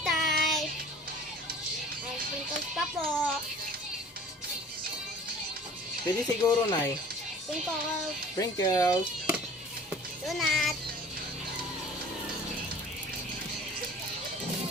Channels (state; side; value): normal; both; correlation 0.47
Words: type. May sprinkles pa po. Pwede siguro, Nay. Sprinkles. Sprinkles. Donut.